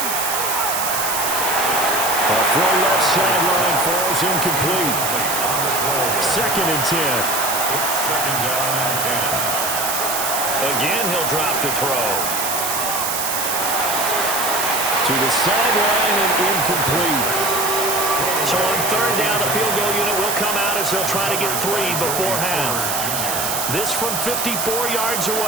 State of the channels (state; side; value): noise; right; hiss, 1 dB below the sound